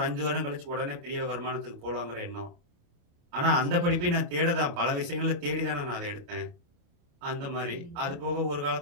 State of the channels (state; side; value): late; left; 29 ms